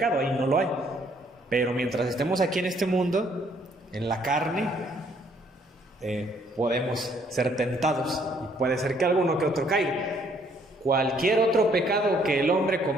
ahí no lo hay. Pero mientras estemos aquí en este mundo, en la carne, podemos ser tentados y puede ser que alguno que otro caiga. Cualquier otro pecado que el hombre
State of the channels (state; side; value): normal; both; correlation 0.66